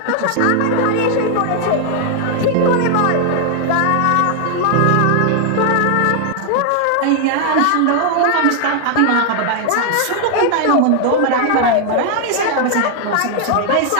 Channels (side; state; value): both; different; correlation 0.00